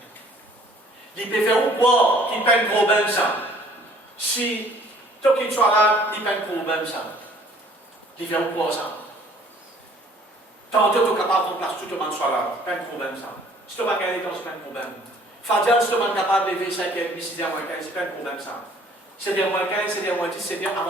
Il peut faire ou quoi qui peine problème ça? Si tout qui soit là, il peine problème ça. Il fait ou quoi ça? Tant que tu es capable de remplacer tout le monde soit là, pas de problème ça. Si tu vas gagner, c'est pas de problème. Fadjal, si tu es capable de lever 5h30, 6h15, c'est pas de problème ça. 7h15, 7h10, 7h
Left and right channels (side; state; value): both; normal; correlation 0.56